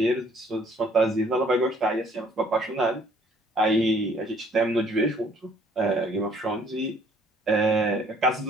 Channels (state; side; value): normal; both; correlation 0.60